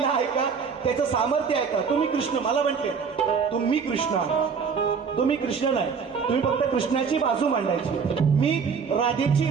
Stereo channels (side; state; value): left; quieter; 6.0 dB